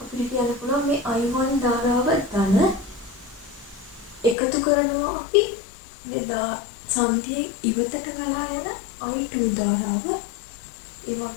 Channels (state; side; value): drops out; right; at 4.4 s